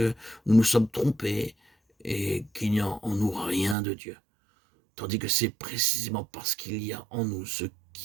nous nous sommes trompés, et qu'il n'y a en nous rien de Dieu. Tandis que c'est précisément parce qu'il y a en nous ce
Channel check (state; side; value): drops out; left; at 3.8 s